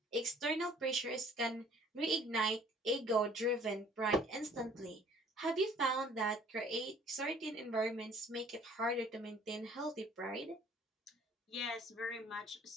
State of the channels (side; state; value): both; normal; correlation 0.55